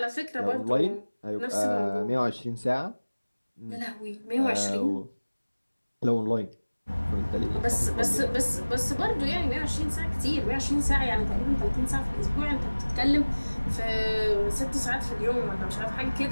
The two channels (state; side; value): inverted; both; correlation -1.00